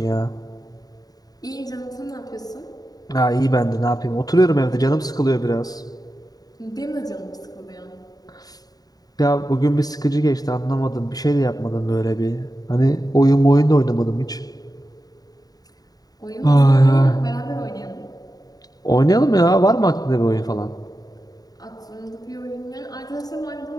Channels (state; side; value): late; right; 0.18 ms